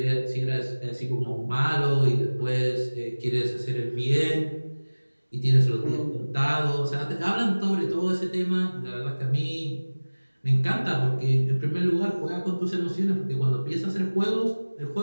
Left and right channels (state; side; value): inverted; both; correlation -1.00